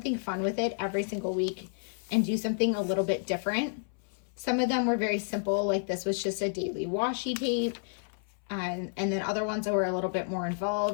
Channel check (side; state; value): right; silent; 57 dB below the other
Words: fun with it every single week and do something a little bit different. Some of them were very simple, like this was just a daily washi tape. And then other ones that were a little bit more